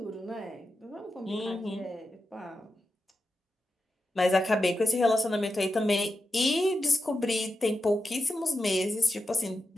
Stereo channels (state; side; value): normal; both; correlation 0.89